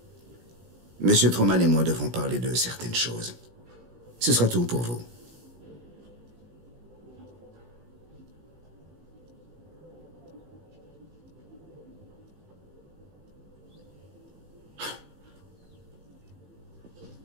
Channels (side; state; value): left; late; 17 ms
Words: Monsieur Truman et moi devons parler de certaines choses. Ce sera tout pour vous.